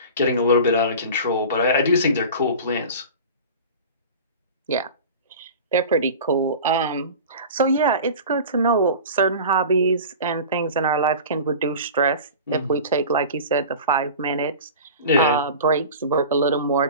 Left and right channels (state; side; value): inverted; both; correlation -0.36